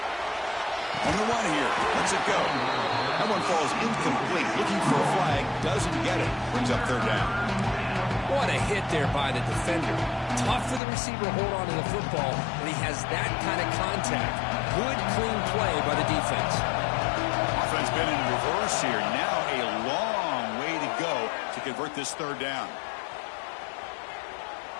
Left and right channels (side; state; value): right; drops out; at 10.8 s